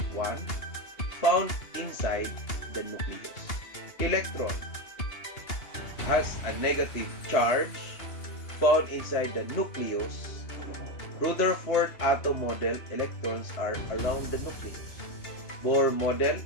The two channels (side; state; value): right; late; 2.8 ms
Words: 1 found inside the nucleus. Electron has a negative charge found inside the nucleus. Rutherford atom model, electrons are around the nucleus. Bohr model,